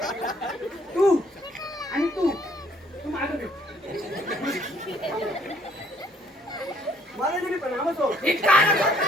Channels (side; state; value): both; normal; correlation 0.63